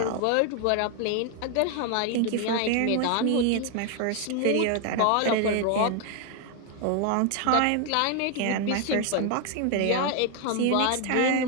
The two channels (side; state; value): both; different; correlation 0.01